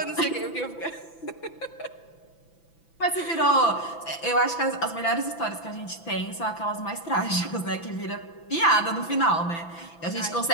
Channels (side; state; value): right; late; 6.0 ms